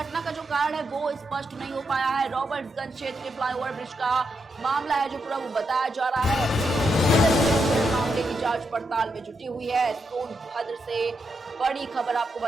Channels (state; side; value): normal; both; correlation 0.83